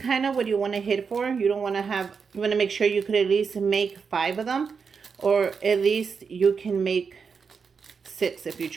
of what you want to hit for. You don't want to have, you want to make sure you could at least make 5 of them. Or at least you can make 6 if you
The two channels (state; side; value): quieter; left; 5.7 dB